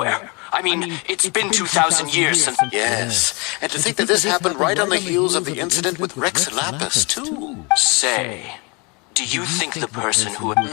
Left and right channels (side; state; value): right; quieter; 29.8 dB